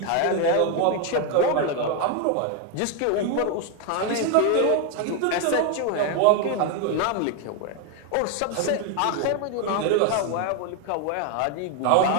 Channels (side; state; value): both; different; correlation 0.01